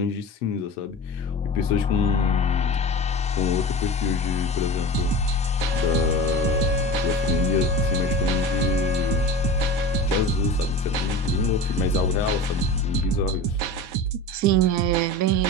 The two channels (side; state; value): both; normal; correlation 0.31